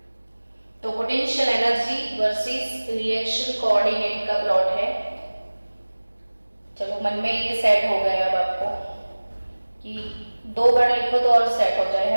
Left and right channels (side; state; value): both; inverted; correlation -1.00